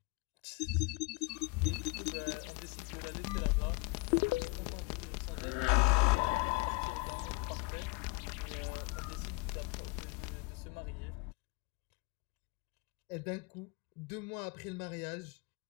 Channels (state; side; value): quieter; right; 25.7 dB